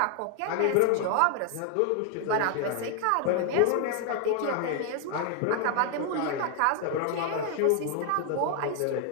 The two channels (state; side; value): different; both; correlation 0.00